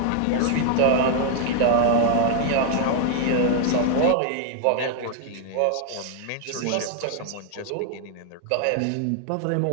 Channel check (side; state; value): both; different; correlation 0.00